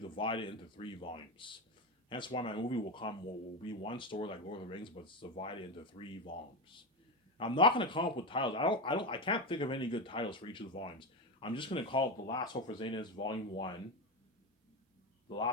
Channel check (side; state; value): both; normal; correlation 0.16